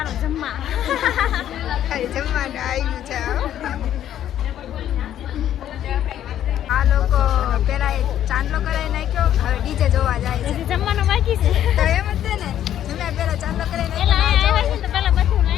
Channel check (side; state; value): right; quieter; 11.1 dB